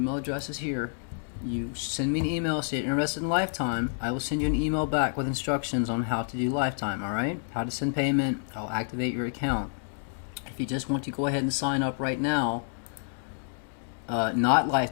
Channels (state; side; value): silent; right; digital silence